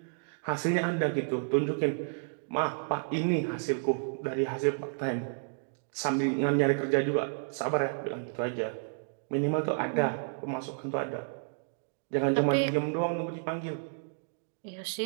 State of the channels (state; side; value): silent; left; digital silence